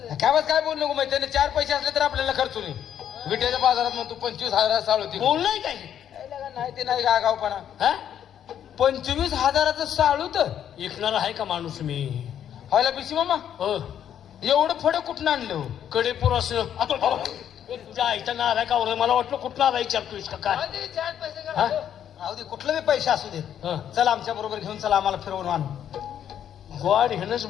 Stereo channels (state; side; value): quieter; right; 9.7 dB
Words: काय बोल नको माहिती त्याने 4 पैसे असले तर आपल्याला खर्च नाही विट्याच्या बाजारात म्हणतो 25,000 साळू टिक बोललाय काय नाही ते नाही गावपणा हा 25,000चं साळू तर ऐकणार आहे का माणूस मी व्हायला पिशी मामा हो एवढं फडं कुठं आणलं कडेपूर असं तुझ्या आईचा नार आहे का मला वाटलं कुठला आला विचारतोयस का काय 4 पैसे हा? राहू दे कुठलं बी पैसे असू दे हा. चल आमच्या बरोबर घेऊन चला आम्हाला फिरवून आणू गोड हेनच